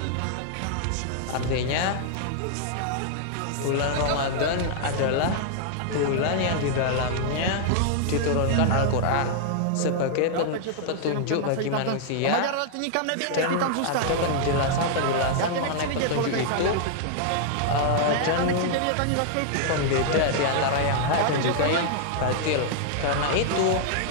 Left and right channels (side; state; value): both; different; correlation 0.00